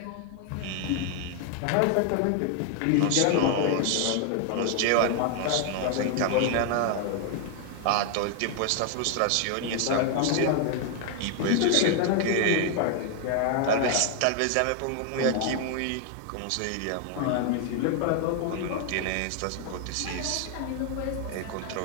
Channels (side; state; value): both; different; correlation 0.00